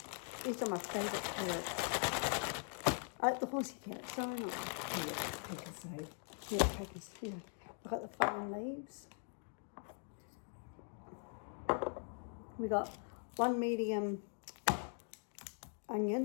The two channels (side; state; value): right; silent; 50 dB below the other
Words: These are my favourite carrots. I like the horsey carrots, don't I? Yeah, Pecos, yeah. I've got the fine leaves. We got one medium